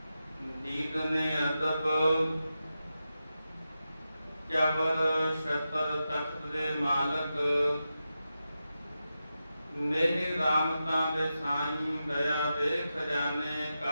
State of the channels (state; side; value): inverted; both; correlation -0.90